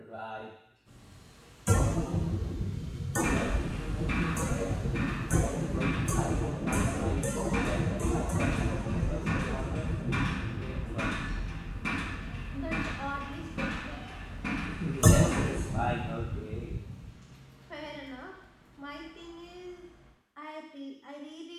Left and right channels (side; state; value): both; identical; correlation 1.00